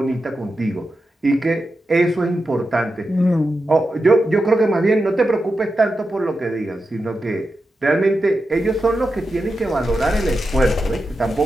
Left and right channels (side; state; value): both; normal; correlation 0.89